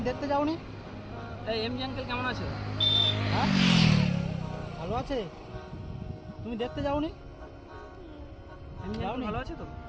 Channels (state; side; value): identical; both; correlation 1.00